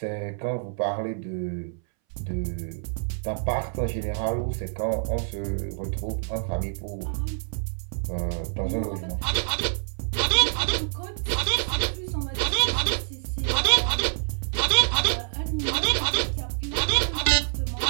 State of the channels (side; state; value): left; silent; 60 dB below the other